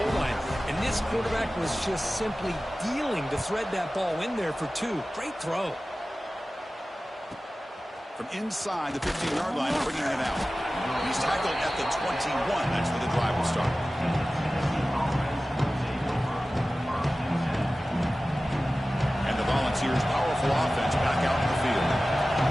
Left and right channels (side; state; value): both; normal; correlation 0.96